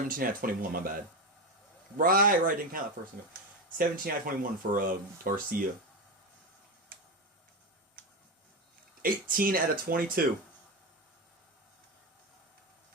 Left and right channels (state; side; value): normal; both; correlation 0.16